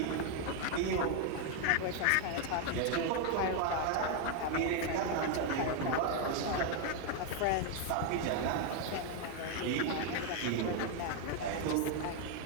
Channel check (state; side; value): different; both; correlation 0.01